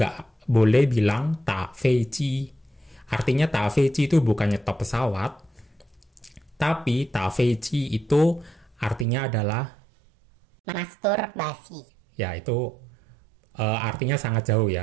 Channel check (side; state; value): left; drops out; at 9.1 s